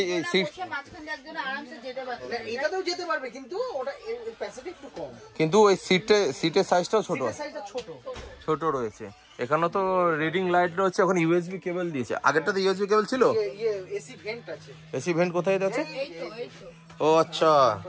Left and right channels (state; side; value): identical; both; correlation 1.00